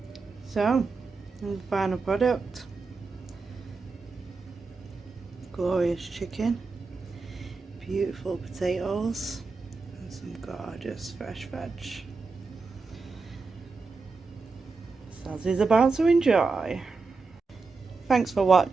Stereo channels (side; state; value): left; quieter; 4.2 dB